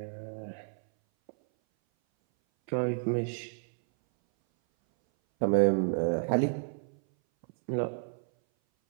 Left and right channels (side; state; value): left; silent; 57 dB below the other